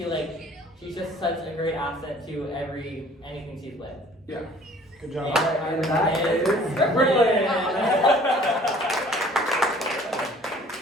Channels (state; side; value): normal; both; correlation 0.53